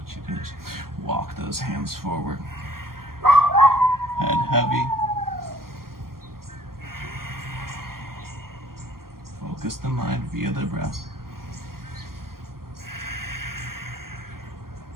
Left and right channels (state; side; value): late; left; 0.93 ms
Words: you can just walk those hands forward. Head heavy. Focus the mind via the breath.